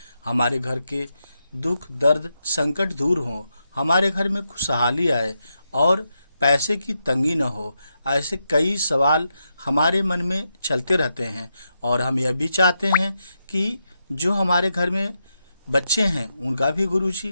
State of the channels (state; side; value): inverted; both; correlation -0.85